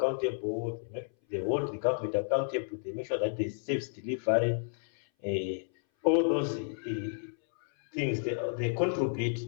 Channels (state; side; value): silent; right; 57 dB below the other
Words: they hold the government accountable, they make sure that they safe delivery, all those things they contribute